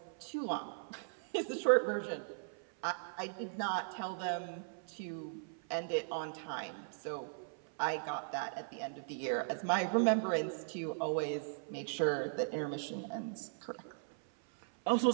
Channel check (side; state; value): left; silent; 52 dB below the other